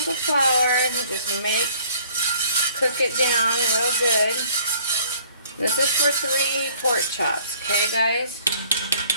of flour. Just cook it down real good. This is for 3 pork chops, okay guys?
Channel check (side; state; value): both; inverted; correlation -0.54